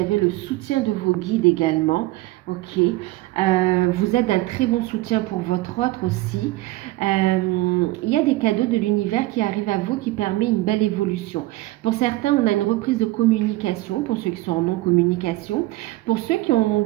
le soutien de vos guides également. Ok, vous êtes d'un très bon soutien pour votre autre aussi. Il y a des cadeaux de l'univers qui arrivent à vous qui permet une belle évolution. Pour certains, on a une reprise de communication, pour ceux qui sont en non-communication. Pour ceux qui ont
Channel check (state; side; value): quieter; left; 18.4 dB